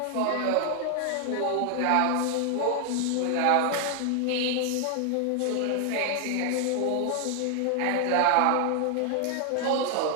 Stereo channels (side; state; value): both; different; correlation 0.00